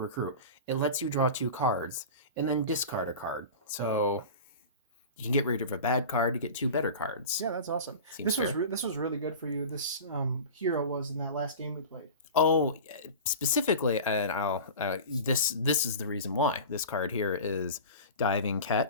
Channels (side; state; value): both; inverted; correlation -0.33